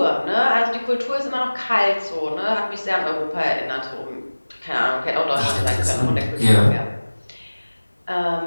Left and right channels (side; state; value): both; inverted; correlation -1.00